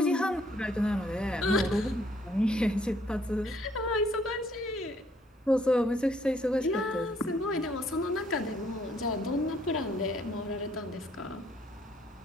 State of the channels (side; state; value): both; normal; correlation 0.66